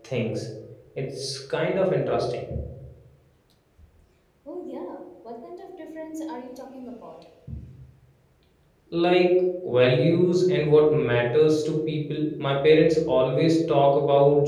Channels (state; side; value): identical; both; correlation 1.00